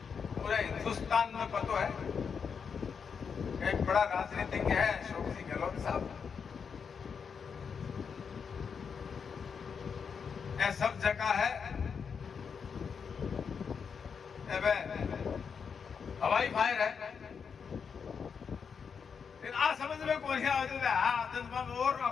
पूरे हिंदुस्तान में पता है। एक बड़ा राजनीतिज्ञ है अशोक जी गहलोत साहब, ये सब जगह है हवाई फायर है, लेकिन आ समझ में कौन और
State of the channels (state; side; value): quieter; right; 6.3 dB